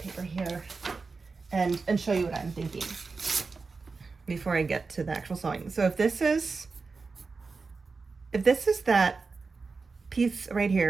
here and show you what I'm thinking before I get to the actual sewing. So if this is that piece right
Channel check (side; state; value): left; quieter; 4.3 dB